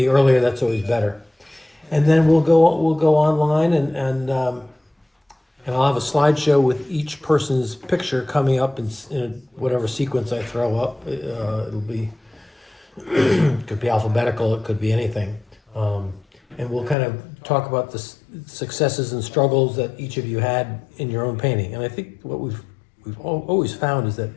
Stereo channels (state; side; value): drops out; right; at 16.9 s